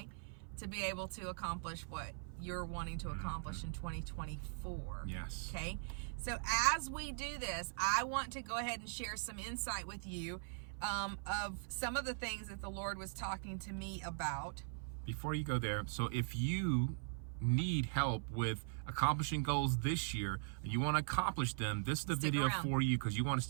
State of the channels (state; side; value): silent; left; 51 dB below the other